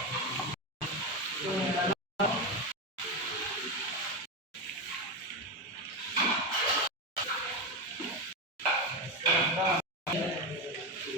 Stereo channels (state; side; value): normal; both; correlation 0.14